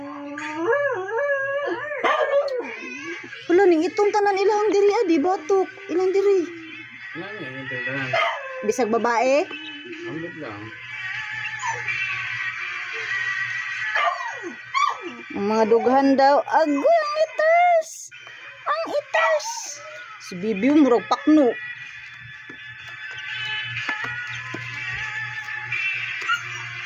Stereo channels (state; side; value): identical; both; correlation 1.00